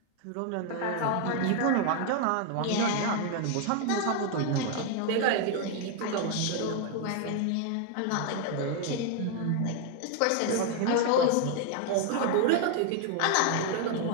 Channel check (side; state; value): both; different; correlation 0.01